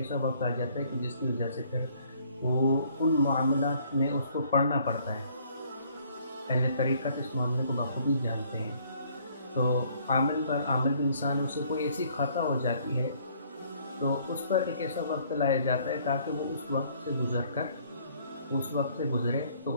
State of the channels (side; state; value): both; inverted; correlation -0.62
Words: وقت آ جاتا ہے کہ جس کی وجہ سے پھر وہ ان معاملات میں اس کو پڑھنا پڑتا ہے۔ اہل طریقت اس معاملے کو بخوبی جانتے ہیں۔ تو عامل انسان سے کوئی ایسی خطا ہو جاتی ہے تو اس پر ایک ایسا وقت لایا جاتا ہے تاکہ وہ اس وقت سے گزرے تو